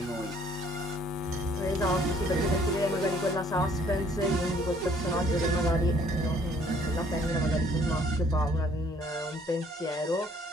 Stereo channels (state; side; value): normal; both; correlation 0.61